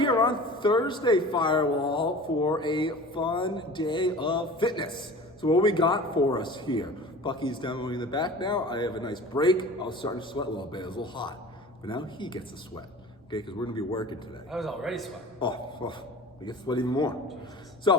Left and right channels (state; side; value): normal; both; correlation 0.40